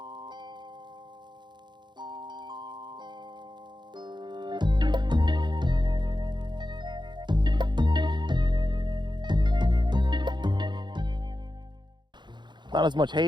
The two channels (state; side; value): late; left; 0.22 ms